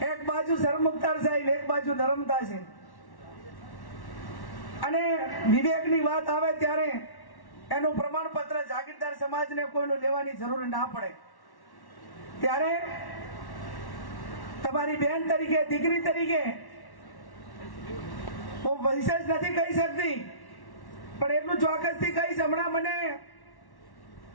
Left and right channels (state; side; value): late; right; 1.1 ms